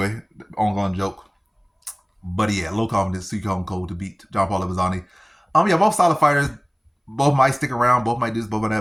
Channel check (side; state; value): both; identical; correlation 1.00